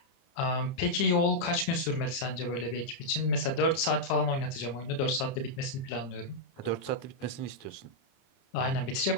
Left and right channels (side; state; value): right; late; 30 ms